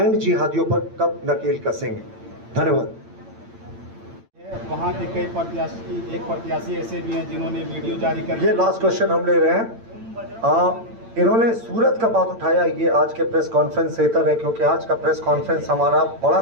जिहादियों पर कब नकेल कसेंगे? धन्यवाद। वहाँ के कई प्रत्याशी, एक प्रत्याशी ऐसे भी हैं जिन्होंने वीडियो जारी कर, ये लास्ट क्वेश्चन हम ले रहे हैं। इन्होंने सूरत का बात उठाया, ये आज के प्रेस कॉन्फ्रेंस से इतर है, क्योंकि आज का प्रेस कॉन्फ्रेंस हमारा बड़ा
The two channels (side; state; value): left; late; 8.8 ms